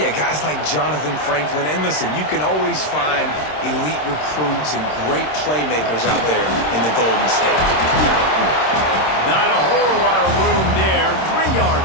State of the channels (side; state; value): right; late; 26 ms